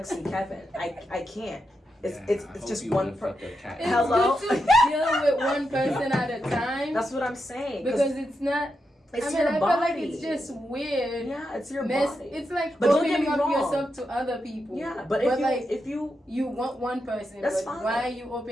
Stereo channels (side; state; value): both; normal; correlation 0.86